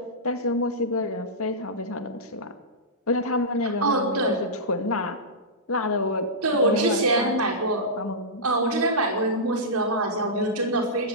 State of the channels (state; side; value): normal; both; correlation -0.15